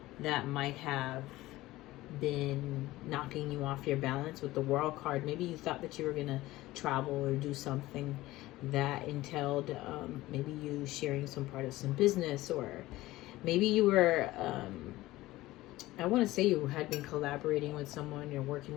that might have been knocking you off your balance. With the World card, maybe you thought that you were gonna travel or do something that entailed maybe you sharing some part of some business, or maybe you were I want to say you had been collaborating with someone, you're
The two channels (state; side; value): quieter; right; 17.6 dB